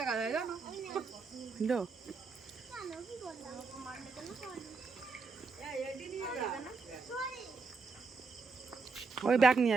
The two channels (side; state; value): left; quieter; 4.4 dB